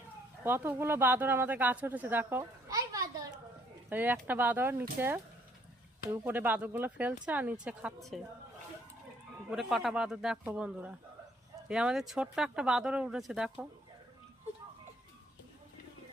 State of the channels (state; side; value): normal; both; correlation 0.65